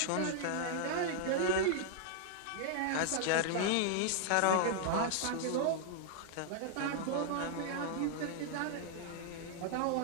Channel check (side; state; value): both; different; correlation -0.01